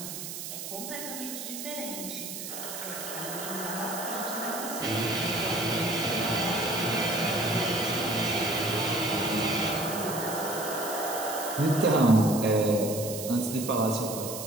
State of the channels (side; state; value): right; noise; hiss, 7 dB below the sound